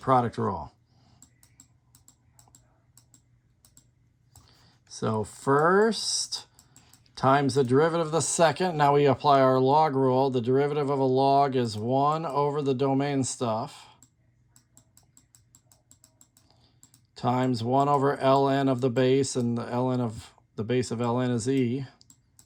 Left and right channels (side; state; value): both; identical; correlation 1.00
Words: rule. So first times the derivative of the second. Now we apply our log rule. The derivative of a log is 1 over the domain stuff times 1 over ln of the base, and the ln of the base of ln is e.